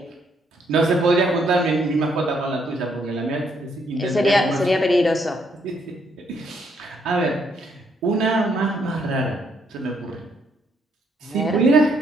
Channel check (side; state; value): both; normal; correlation 0.72